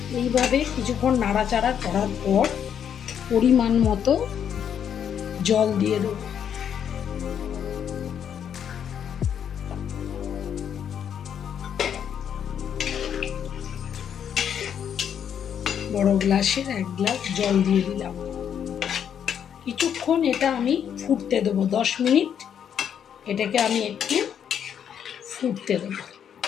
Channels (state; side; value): quieter; right; 8.6 dB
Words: এইভাবে কিছুক্ষণ নাড়াচাড়া করার পর পরিমাণ মতো জল দিয়ে দেব। বড় গ্লাসের 1 গ্লাস জল দিয়ে দিলাম। কিছুক্ষণ এটা আমি ফুটতে দেবো, 10 মিনিট এটাকে আমি একটু ফুটতে দেবো।